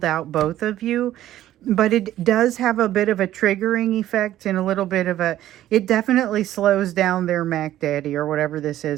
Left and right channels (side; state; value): left; quieter; 13.2 dB